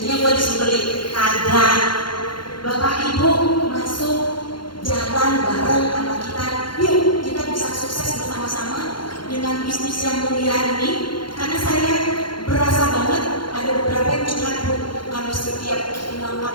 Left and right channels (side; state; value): right; late; 0.72 ms